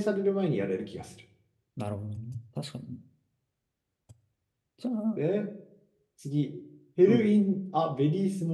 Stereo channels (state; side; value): identical; both; correlation 1.00